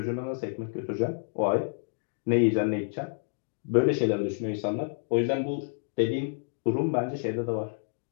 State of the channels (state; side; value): silent; right; digital silence